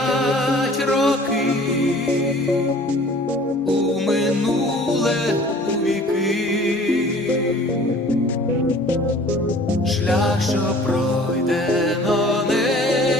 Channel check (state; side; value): normal; both; correlation 0.49